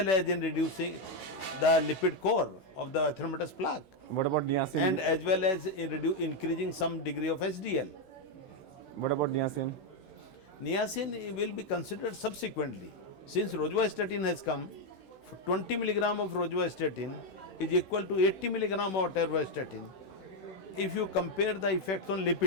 as in reducing the lipid core of the atheromatous plaque, what about niacin? and as well as in increasing some degree of SDL. What about niacin? Niacin will be considered subsequently. Since rosuvastatin has come, 20 milligram of rosuvastatin is equal to 80 milligram of atorvastatin if you compare the effects on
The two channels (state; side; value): late; right; 16 ms